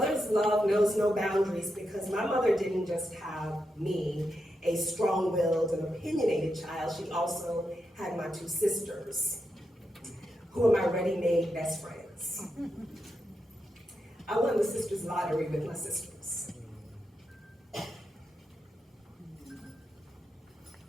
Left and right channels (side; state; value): both; normal; correlation 0.86